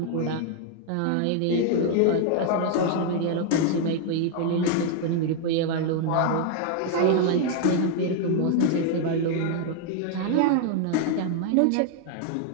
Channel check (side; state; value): both; different; correlation 0.00